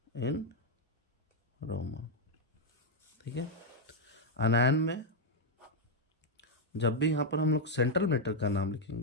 इन रोमन। ठीक है, अनायन में जब भी यहाँ पर हम लोग सेंट्रल मेटल का नाम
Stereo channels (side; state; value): both; normal; correlation 0.00